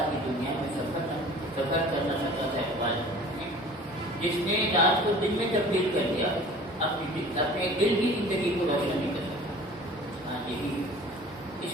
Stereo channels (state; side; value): normal; both; correlation 0.45